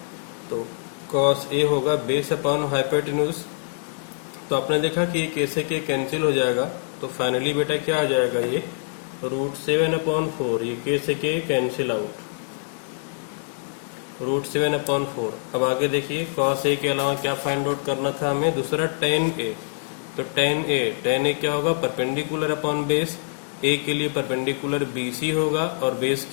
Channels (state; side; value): silent; right; digital silence